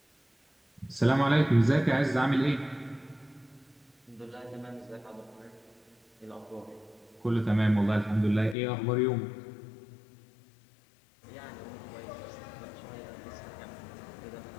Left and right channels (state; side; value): drops out; right; at 8.6 s